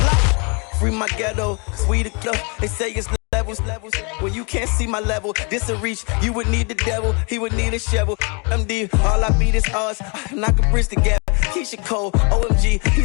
Free my ghetto, sweet club. They say it's levels. When you can't see my level, this a reach. You would need the devil, he would need a shovel. MD, all I beat is us. Knock a bridge together. Keisha Cole, OMG,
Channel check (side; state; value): right; quieter; 33.6 dB